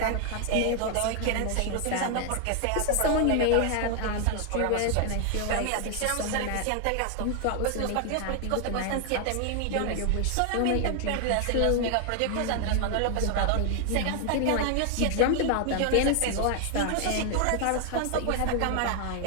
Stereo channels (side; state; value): both; different; correlation 0.00